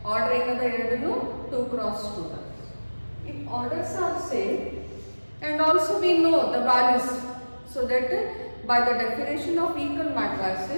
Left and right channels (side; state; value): both; inverted; correlation -1.00